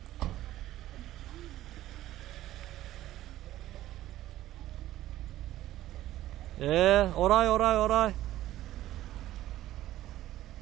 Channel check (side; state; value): left; quieter; 14.3 dB